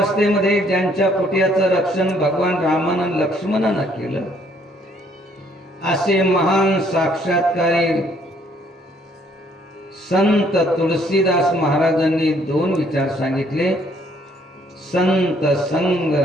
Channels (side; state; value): both; normal; correlation 0.65